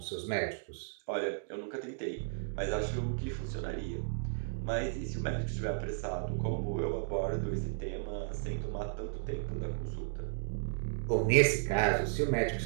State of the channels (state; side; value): silent; left; digital silence